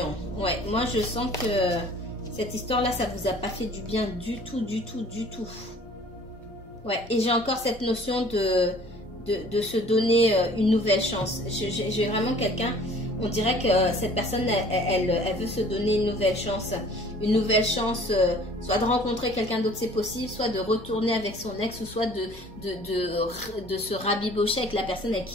Ouais, moi je sens que cette histoire-là, ça vous a pas fait du bien du tout. Ouais, et j'ai encore cette notion de se donner une nouvelle chance. J'ai vraiment quelqu'un... On dirait que cette personne, elle veut se donner une nouvelle chance. Une nouvelle chance, soit de rencontrer quelqu'un d'autre, c'est possible, soit de retourner avec son ex, ou soit de se rabibocher avec la personne avec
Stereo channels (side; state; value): both; normal; correlation 0.52